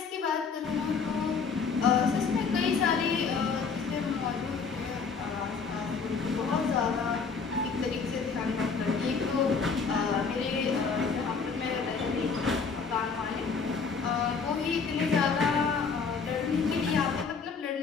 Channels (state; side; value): quieter; right; 5.2 dB